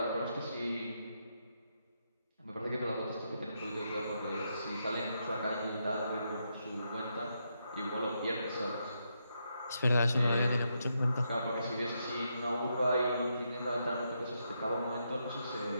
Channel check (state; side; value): inverted; both; correlation -0.81